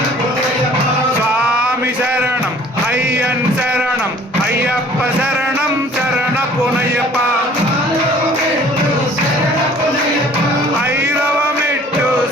స్వామి శరణం అయ్యన్ శరణం అయ్యప్ప శరణం శరణపునయ్యప్ప ఐదవ మెట్టు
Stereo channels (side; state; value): both; normal; correlation 0.52